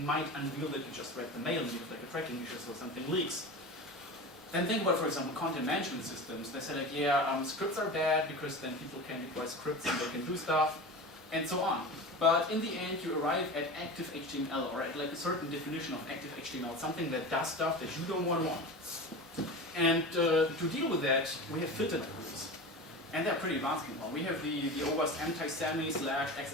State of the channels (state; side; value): normal; both; correlation 0.30